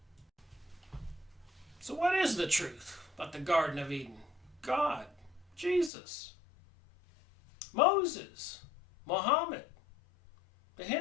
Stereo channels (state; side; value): drops out; right; at 5.9 s